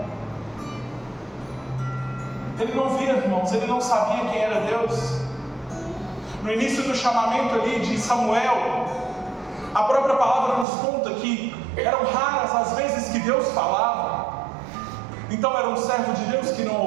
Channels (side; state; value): left; drops out; at 10.7 s